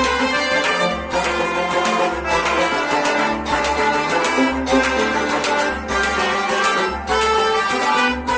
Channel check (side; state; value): both; identical; correlation 1.00